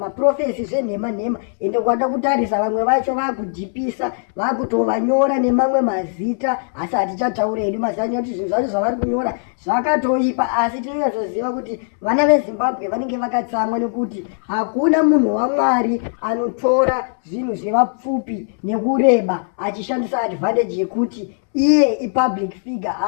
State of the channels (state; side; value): silent; right; 65 dB below the other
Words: zvenhema, ende kwada kutarisa vamwe vacho vakudhipisa, vakutovanyora nemamwe mazita, asi hatichataura hedu mazanya kuti zvinhu zvacho zvavari kunyora zvakatoipa. Asi tinonyatsoziva kuti vana veZimbabwe vanenge vakatsamwa nekuti hakuna munhu waMwari anotora zvinhu zvevapfupi nekureba achishandisa advantage yekuti iye ipublic figure,